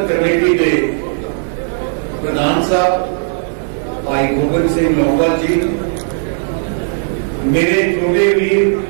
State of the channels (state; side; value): silent; left; digital silence